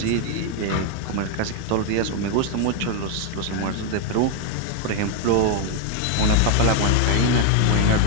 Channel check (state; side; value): different; both; correlation 0.01